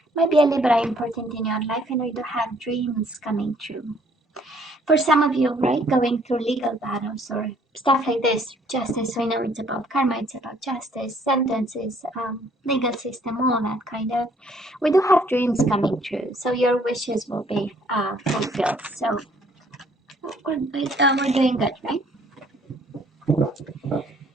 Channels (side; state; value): both; normal; correlation 0.62